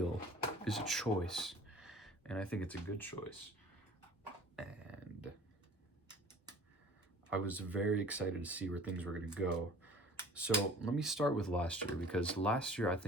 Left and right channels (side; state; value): both; normal; correlation 0.46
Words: is a choice, and I think it's a good choice. And I was very excited to see where things were going to go. So let me start with last year, because last year I